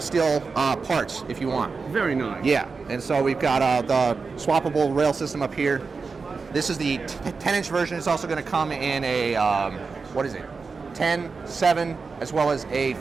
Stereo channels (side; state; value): left; quieter; 4.6 dB